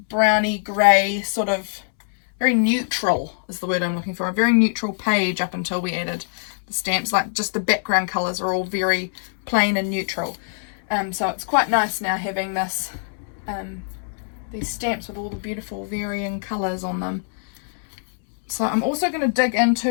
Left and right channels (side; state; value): right; silent; 63 dB below the other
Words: browny grey sort of, very neutral is the word I'm looking for. A very neutral page up until we added the stamps. Like just the background colours are all very plain and neutral. So it's quite nice now having this... these stamps with all the beautiful varying colours on them. So I'm also going to dig